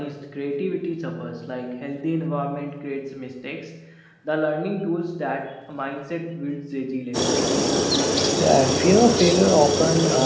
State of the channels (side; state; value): both; identical; correlation 1.00